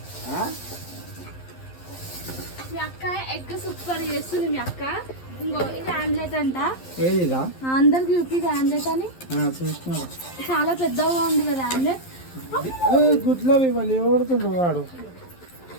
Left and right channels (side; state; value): right; late; 11 ms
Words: మీ అక్క ఎగ్ సూపర్ చేస్తుంది. మీ అక్క ఇంకో ఇది ఆమ్లెట్ అంట. ఏదిగా అందరికి చూపి ఆమ్లెట్ అని. చూస్తున్నా, చాలా పెద్దగా ఉంది కదా ఆమ్లెట్. గుడ్లో ఇవ్వాలి ఎవడుతుండ్రు వాడు.